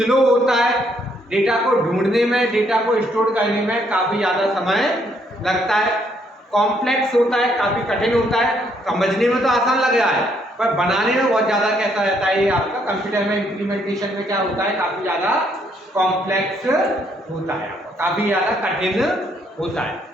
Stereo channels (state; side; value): normal; both; correlation 0.70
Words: होता है, डेटा को ढूंढने में, डेटा को स्टोर करने में काफ़ी ज़्यादा समय लगता है, कॉम्प्लेक्स होता है, काफ़ी कठिन होता है। समझने में तो आसान लग रहा है, पर बनाने में बहुत ज़्यादा कैसा रहता है ये आपका कंप्यूटर में इम्प्लीमेंटेशन में क्या होता है? काफ़ी ज़्यादा कॉम्प्लेक्स होता है, काफ़ी ज़्यादा कठिन होता है।